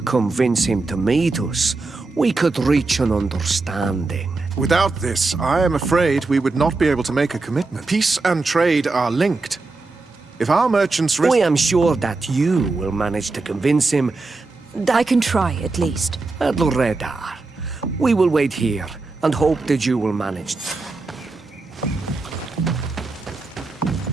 convince him to meet us, we could reach an understanding. Without this, I am afraid we would not be able to make a commitment. Peace and trade are linked. If our merchants risk... I am sure that you will manage to convince him that... I can try, at least. Adloredar. We will wait here and hope that you will manage.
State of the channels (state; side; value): quieter; left; 3.6 dB